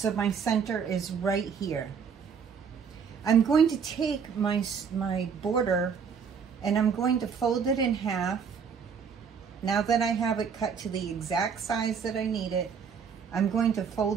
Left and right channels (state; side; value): quieter; left; 6.5 dB